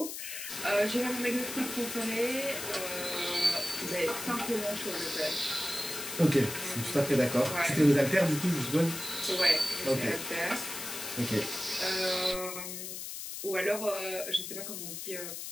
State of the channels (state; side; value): noise; left; hiss, 7 dB below the sound